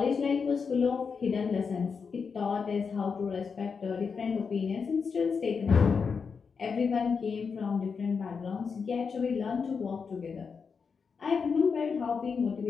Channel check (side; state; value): right; quieter; 5.6 dB